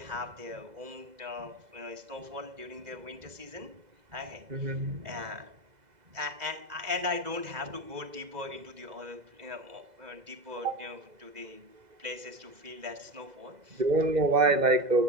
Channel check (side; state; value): left; late; 2.0 ms